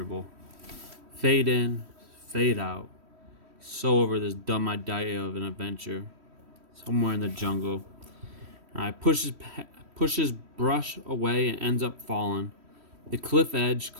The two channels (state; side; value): late; left; 3.1 ms